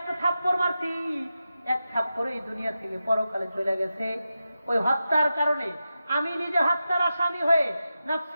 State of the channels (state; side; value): inverted; both; correlation -0.91